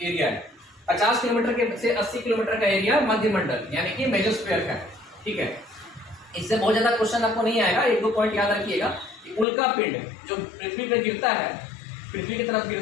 एरिया है। 50 किलोमीटर से 80 किलोमीटर का एरिया मध्य मंडल यानी कि मेजोस्फेयर का है। ठीक है, इससे बहुत ज्यादा क्वेश्चन आपको नहीं आएगा। 1-2 पॉइंट याद रखिएगा कि उल्का पिंड जो पृथ्वी पे गिरता है, पृथ्वी की तरफ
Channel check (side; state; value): right; drops out; at 9.5 s